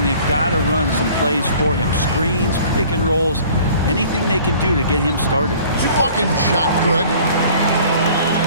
they've got to run some plays for him. Screens, pick and rolls, anything they can do to get him started. Fucking shot good.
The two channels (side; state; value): both; inverted; correlation -0.50